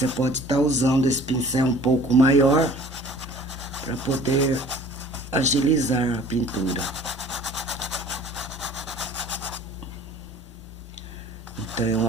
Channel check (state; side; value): normal; both; correlation 0.48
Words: pode estar usando esse pincel um pouco maior para poder agilizar a pintura. Então